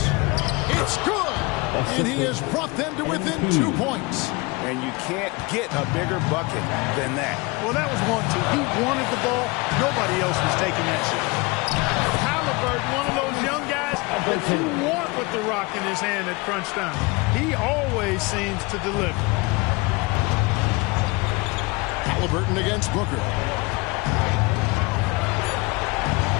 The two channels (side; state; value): right; quieter; 25.6 dB